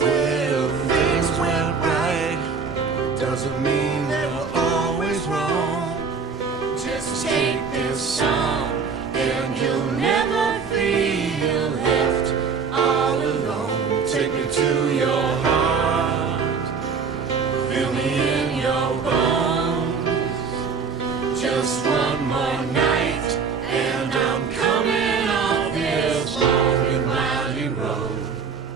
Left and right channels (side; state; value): left; quieter; 5.5 dB